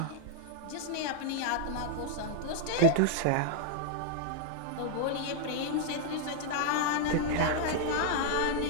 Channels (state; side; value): different; both; correlation -0.01